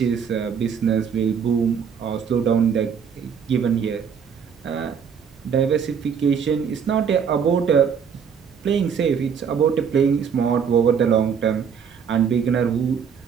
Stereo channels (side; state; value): left; quieter; 7.0 dB